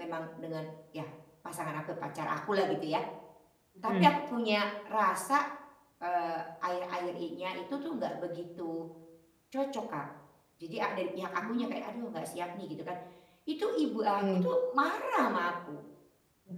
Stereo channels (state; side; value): identical; both; correlation 1.00